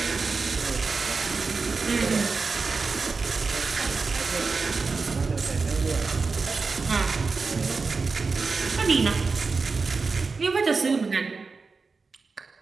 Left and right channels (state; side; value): quieter; left; 4.4 dB